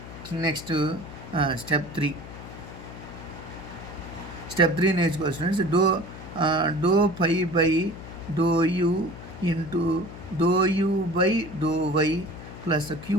Next step 3 నేర్చుకోవాలి students. Do phi by do u into do u by do y plus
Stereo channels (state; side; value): noise; left; hum, 13 dB below the sound